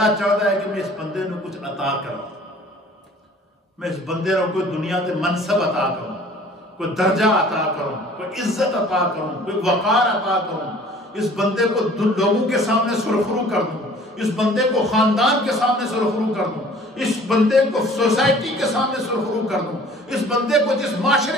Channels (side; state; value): both; normal; correlation 0.51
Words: چاہتا ہے کہ میں اس بندے نے کچھ عطا کروں، میں اس بندے نے کوئی دنیا کے منصب عطا کروں، کوئی درجہ عطا کروں، کوئی عزت عطا کروں، کوئی وقار عطا کروں، اس بندے کو لوگوں کے سامنے سرخرو کر دوں، اس بندے کو خاندان کے سامنے سرخرو کر دوں، اس بندے کو سوسائٹی کے سامنے سرخرو کر دوں، اس بندے کو جس معاشرے